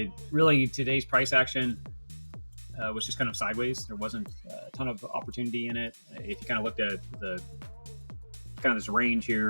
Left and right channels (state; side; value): inverted; both; correlation -1.00